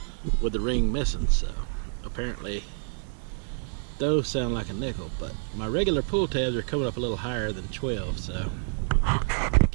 with the ring missing. So apparently those sound like a nickel, but my regular pull tabs are coming up a little higher than 12, so we'll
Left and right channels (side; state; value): left; silent; digital silence